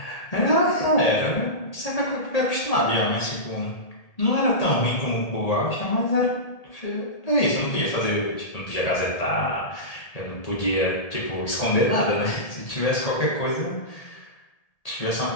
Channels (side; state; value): right; late; 1.8 ms